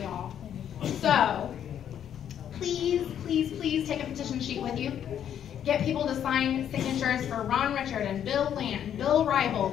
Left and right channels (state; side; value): quieter; right; 9.5 dB